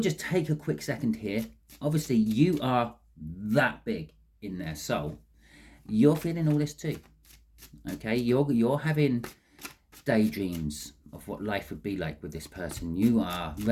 just take a quick second here. Obviously, you are that big in their soul. You're feeling all this too. Okay, you're having daydreams of what life would be like with this person. You are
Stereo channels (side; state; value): both; identical; correlation 1.00